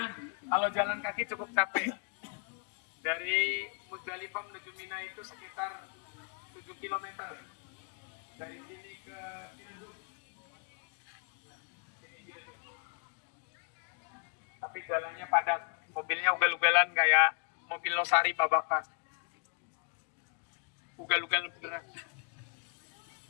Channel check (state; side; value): quieter; right; 38.4 dB